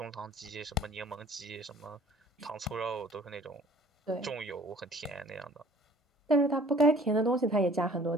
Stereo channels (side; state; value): both; normal; correlation 0.52